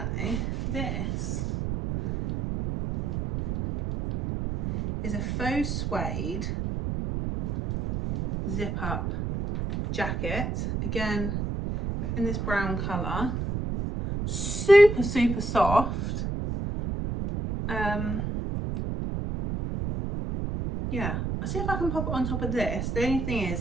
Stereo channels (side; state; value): right; noise; rumble, 2 dB below the sound